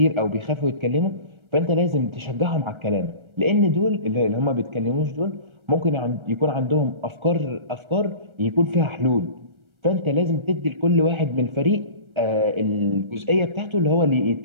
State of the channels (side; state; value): left; late; 1.3 ms